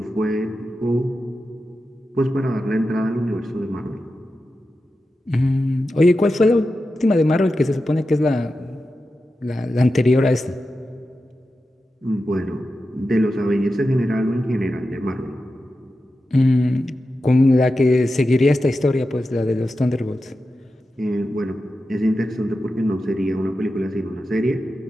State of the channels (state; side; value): normal; both; correlation 0.91